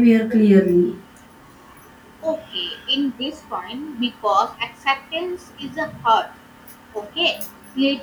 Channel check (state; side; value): identical; both; correlation 1.00